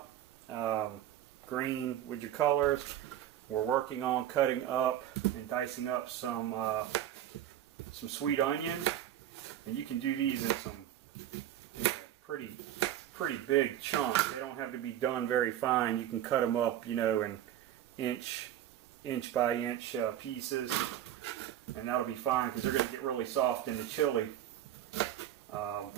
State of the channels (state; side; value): quieter; left; 11.6 dB